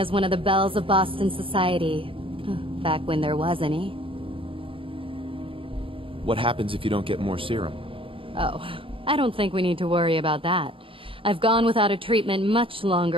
one of the belles of Boston society, back when there was any. What happens if you don't get more serum? Oh, I don't think we need to worry about that. I've gone without a treatment much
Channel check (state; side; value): late; left; 0.26 ms